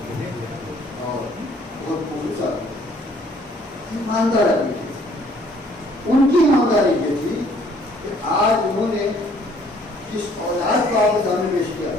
اور بہت خصوصا ایماندار آدمی تھے۔ ان کی ایمانداری یہ تھی کہ آج انہوں نے جس اولاد کو آپ کے سامنے پیش کیا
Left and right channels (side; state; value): both; normal; correlation 0.61